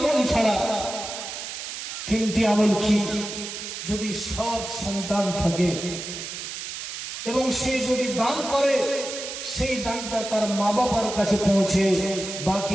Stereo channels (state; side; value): noise; right; hiss, 7 dB below the sound